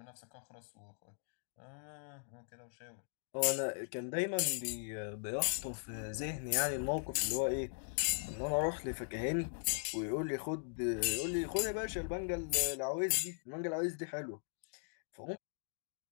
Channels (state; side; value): silent; right; digital silence